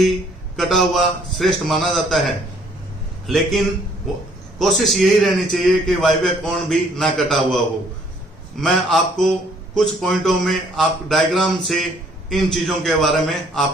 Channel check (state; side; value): normal; both; correlation 0.62